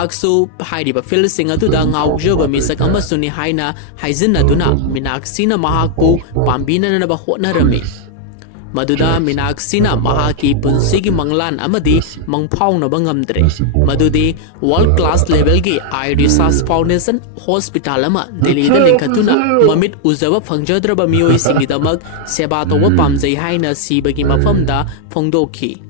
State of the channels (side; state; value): both; different; correlation 0.00